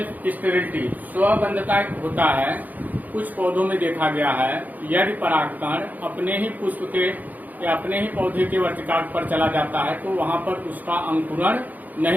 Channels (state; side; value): late; left; 0.081 ms